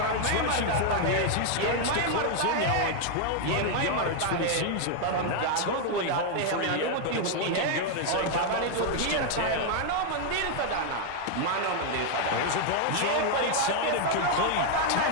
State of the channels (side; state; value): both; different; correlation 0.00